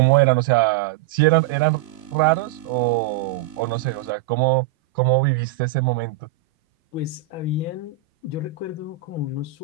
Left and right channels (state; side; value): quieter; left; 12.9 dB